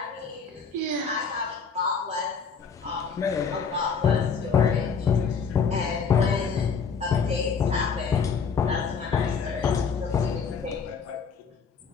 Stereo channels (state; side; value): quieter; right; 5.8 dB